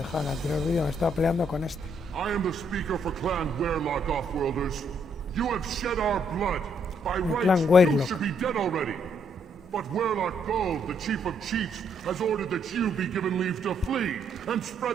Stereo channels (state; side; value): normal; both; correlation 0.72